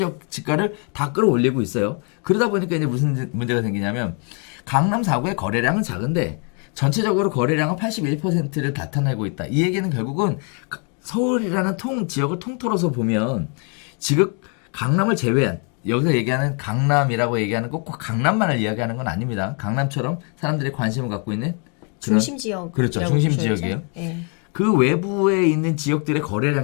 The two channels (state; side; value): quieter; right; 38.3 dB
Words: 지가를 다 끌어올리고 있어요. 그러다 보니까 이제 무슨 문제가 생기냐면 강남 4구의 거래량은 작은데 전체적으로 거래량은 81%를 나타내고 있다. 이 얘기는 결국은 서울이라는 지역을 통틀어서 보면 지금 강남을 제외한 여기서 얘기하는 강남이라고 얘기하는 꼭 강남만을 이야기하는 건 아닙니다. 강남처럼 사람들이 관심을 갖고 있는 그런 중심 지역. 그렇죠. 중심 지역이에요. 네. 그 외부에 있는 지역들의